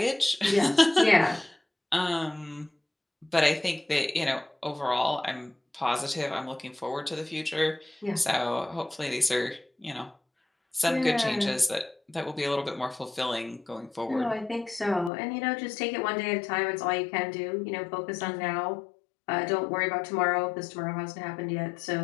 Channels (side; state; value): right; drops out; at 15.1 s